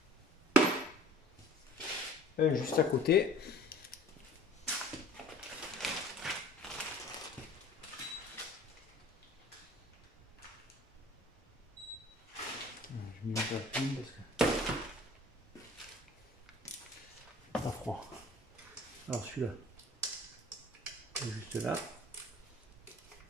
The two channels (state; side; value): normal; both; correlation 0.48